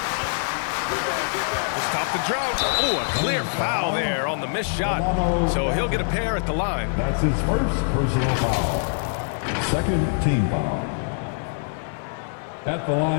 To stop the drought. Oh, a clear foul there on the missed shot. So he'll get a pair at the line. That's his first personal foul. Second team foul. At the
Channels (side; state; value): right; silent; digital silence